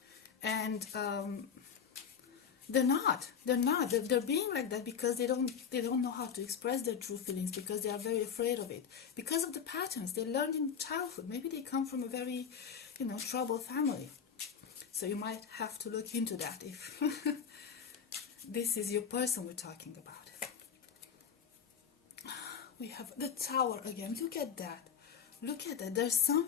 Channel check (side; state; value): right; quieter; 7.2 dB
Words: And they're not. They're being like that because they don't know how to express their true feelings, because they are very afraid of it. Because of the patterns they learned in childhood. Maybe they come from a very, troubled family. So you might have to look into that if this is your person we're talking about. We have the Tower again. Look at that. Look at that. There's